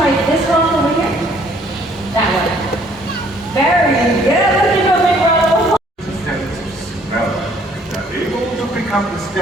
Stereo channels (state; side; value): normal; both; correlation 0.61